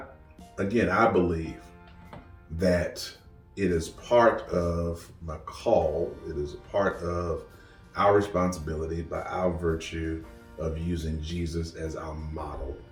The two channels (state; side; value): identical; both; correlation 1.00